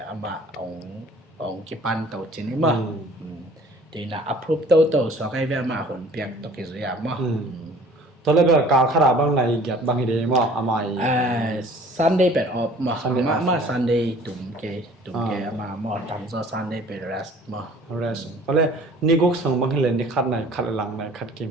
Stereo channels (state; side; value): normal; both; correlation 0.50